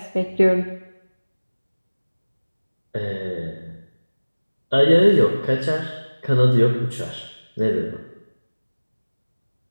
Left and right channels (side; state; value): both; inverted; correlation -1.00